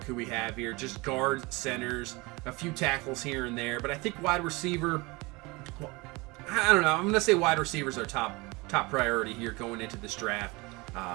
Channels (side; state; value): left; quieter; 24.6 dB